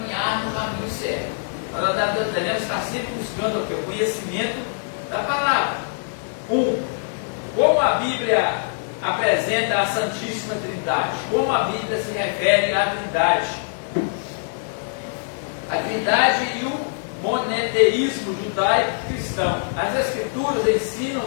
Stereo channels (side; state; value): right; silent; digital silence